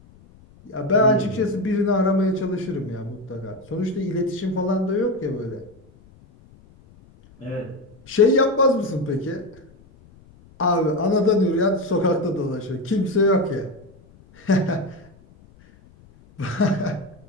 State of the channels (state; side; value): noise; left; rumble, 26 dB below the sound